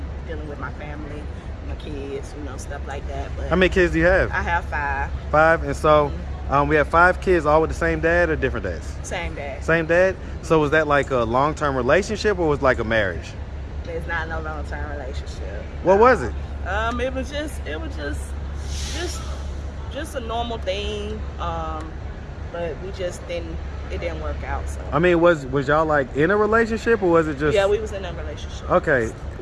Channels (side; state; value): both; identical; correlation 1.00